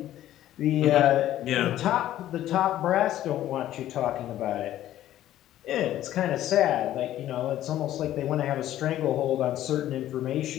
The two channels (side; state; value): right; quieter; 13.0 dB